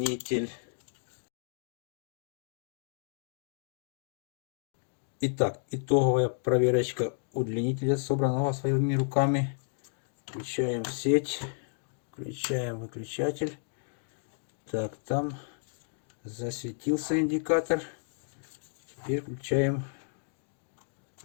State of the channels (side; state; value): right; silent; digital silence